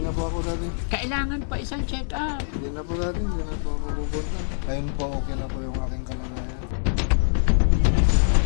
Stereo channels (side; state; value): right; silent; digital silence